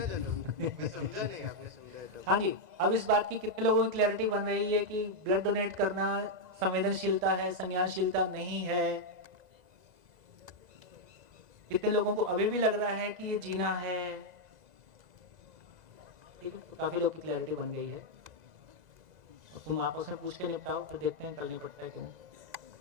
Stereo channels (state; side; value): late; left; 2.0 ms